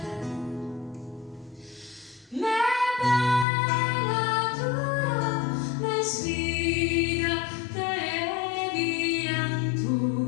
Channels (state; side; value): drops out; right; at 3.5 s